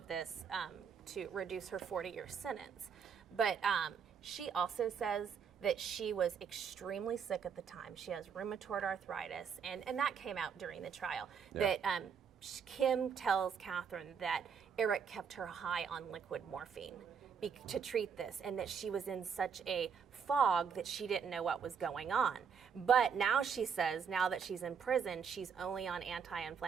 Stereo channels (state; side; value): quieter; left; 6.7 dB